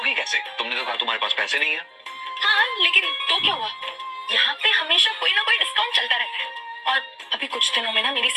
कैसे? तुमने तो कहा तुम्हारे पास पैसे नहीं है। हाँ, लेकिन तो क्या हुआ, यहाँ पे हमेशा कोई ना कोई डिस्काउंट चलता रहता है। और अभी कुछ दिनों में ना मेरी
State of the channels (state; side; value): identical; both; correlation 1.00